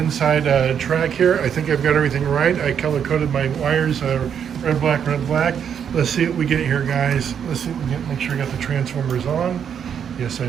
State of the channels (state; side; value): quieter; left; 8.1 dB